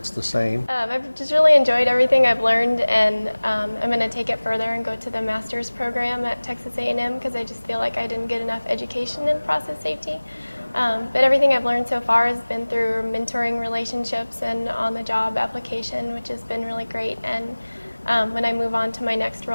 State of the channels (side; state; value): both; inverted; correlation -1.00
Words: the same? I've just really enjoyed everything I've learned, and I'm going to take it further and go to the master's program at Texas A&M because I just feel like I didn't get enough education in process safety. But everything I've learned so far has been through mentoring relationships and on-the-job application, which has been really great. And when I move on to my next